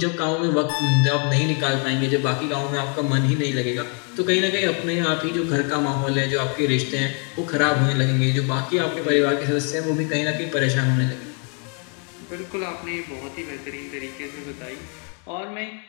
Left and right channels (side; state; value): right; quieter; 39.4 dB